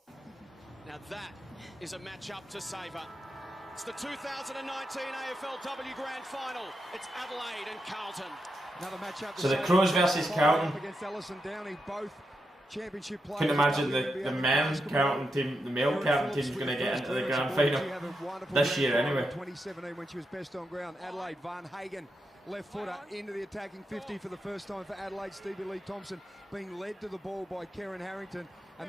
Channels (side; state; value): both; normal; correlation 0.85